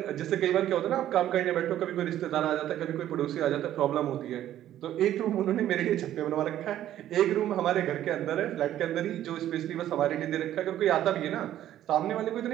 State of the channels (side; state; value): left; quieter; 12.2 dB